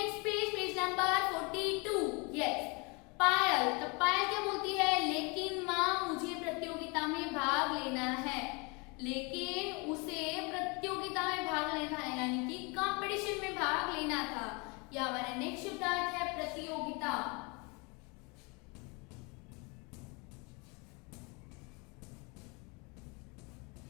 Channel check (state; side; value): quieter; right; 29.9 dB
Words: page, page number 42। Yes, Payal, तो पायल क्या बोलती है, लेकिन मां मुझे प्रतियोगिता में भाग लेना है। लेकिन उसे प्रतियोगिता में भाग लेना है यानी कि कंपटीशन में भाग लेना था। यह हमारा नेक्स्ट शब्द है प्रतियोगिता।